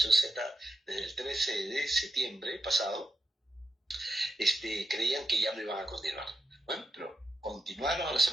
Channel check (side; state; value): both; normal; correlation 0.87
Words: Z desde el 13 de septiembre pasado, creían que ya no iban a continuar. Bueno, pero continuaron a la